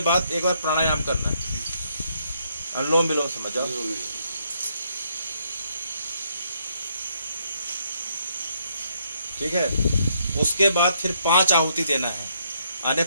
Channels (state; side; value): inverted; both; correlation -0.73